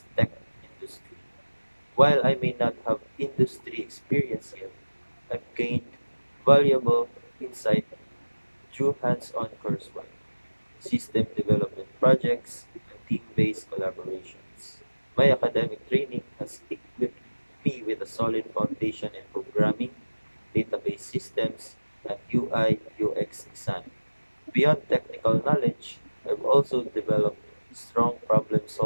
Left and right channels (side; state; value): both; inverted; correlation -1.00